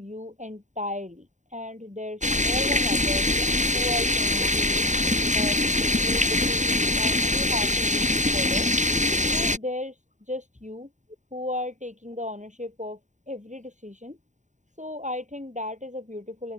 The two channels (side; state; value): left; late; 0.35 ms